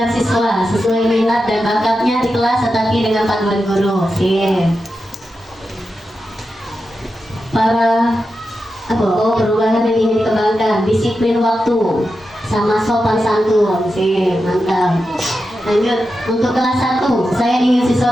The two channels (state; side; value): normal; both; correlation 0.90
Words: siswa sesuai minat dan bakatnya di kelas tetapi dengan panduan guru. Oke. Perubahan yang ingin dikembangkan, disiplin waktu sama sopan santun. Oke, mantap. Lanjut, untuk kelas 1, saya ingin